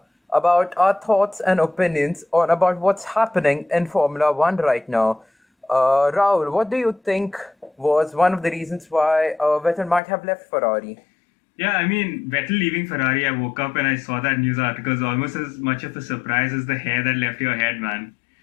our thoughts and opinions on about what's happening in Formula One right now. Rahul, what do you think was one of the reasons why Vettel might have left Ferrari? Yeah, I mean, Vettel leaving Ferrari, I woke up and I saw that news article. It's almost as much of a surprise as the hair that left your head, man.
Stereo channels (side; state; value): right; drops out; at 10.0 s